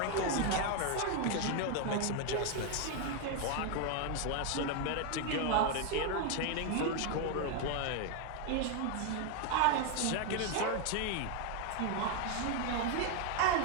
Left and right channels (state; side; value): different; both; correlation 0.01